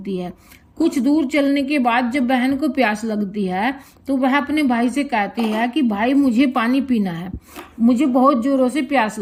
है। कुछ दूर चलने के बाद जब बहन को प्यास लगती है तो वह अपने भाई से कहती है कि भाई मुझे पानी पीना है, मुझे बहुत जोरों से प्यास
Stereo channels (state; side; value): identical; both; correlation 1.00